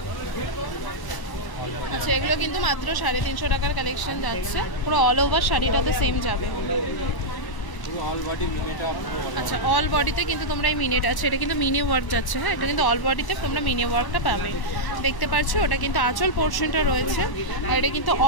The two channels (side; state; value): right; late; 1.0 ms